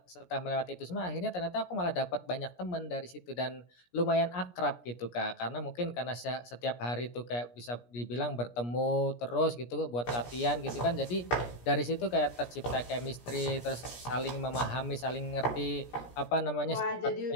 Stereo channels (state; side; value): late; right; 17 ms